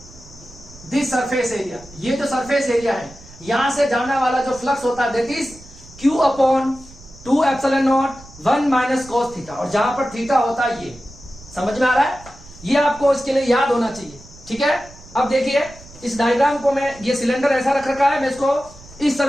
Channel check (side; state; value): right; noise; rumble, 21 dB below the sound